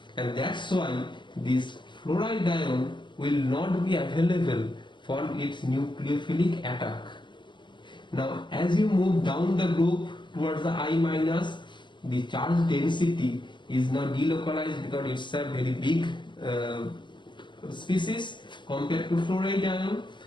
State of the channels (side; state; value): right; late; 0.22 ms